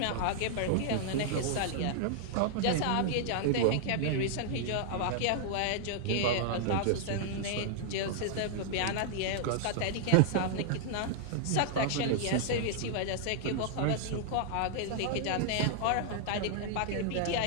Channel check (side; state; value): both; different; correlation -0.01